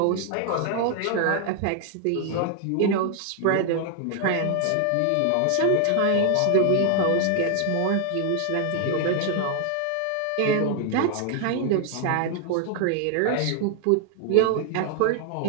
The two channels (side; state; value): both; different; correlation 0.00